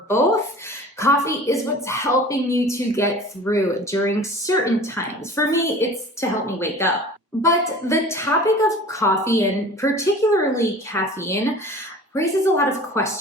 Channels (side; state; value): both; normal; correlation 0.42